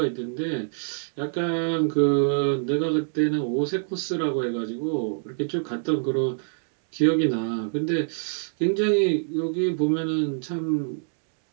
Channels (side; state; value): left; silent; digital silence